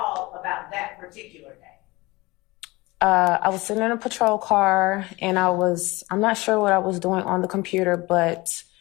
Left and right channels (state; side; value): quieter; right; 22.1 dB